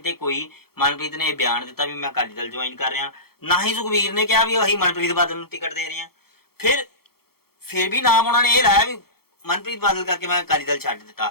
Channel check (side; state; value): right; late; 0.95 ms